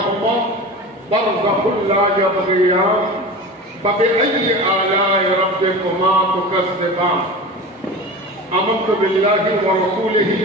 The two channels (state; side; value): normal; both; correlation 0.32